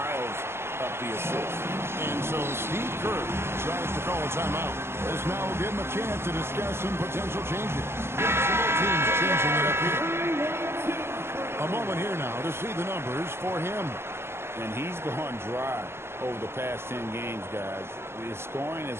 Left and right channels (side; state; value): left; late; 0.12 ms